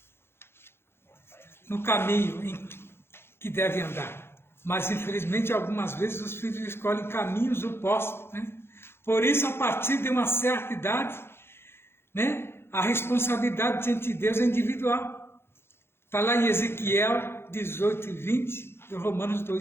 no caminho em que devem andar. Mas, infelizmente, algumas vezes os filhos escolhem caminhos opostos, né? Por isso, a partir de uma certa idade, né, a responsabilidade diante de Deus é individual. Está lá em Ezequiel 18 e 20, e Romanos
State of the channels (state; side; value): late; right; 0.12 ms